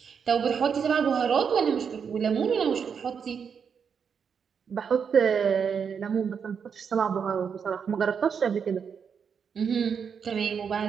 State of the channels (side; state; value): left; quieter; 6.7 dB